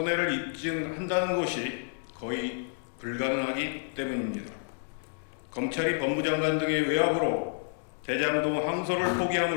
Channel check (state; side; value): silent; right; digital silence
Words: 입증한다는 것이 거의 불가능하기 때문입니다. 검찰이 법무장관 등의 외압으로 대장동 항소를